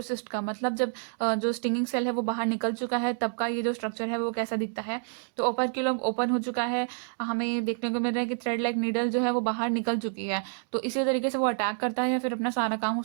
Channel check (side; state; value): left; silent; digital silence